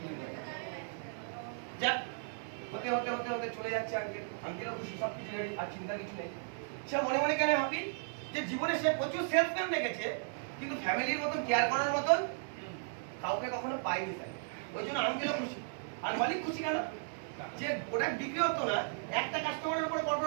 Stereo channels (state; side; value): silent; left; 54 dB below the other